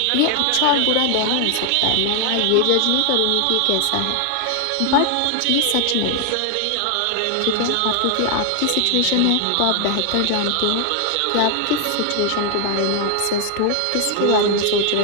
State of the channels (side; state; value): both; different; correlation 0.00